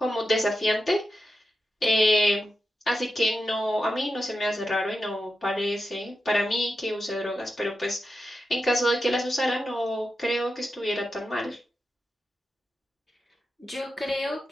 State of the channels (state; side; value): normal; both; correlation 0.89